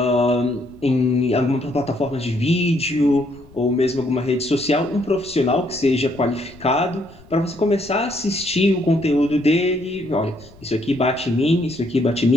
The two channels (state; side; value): noise; left; rumble, 23 dB below the sound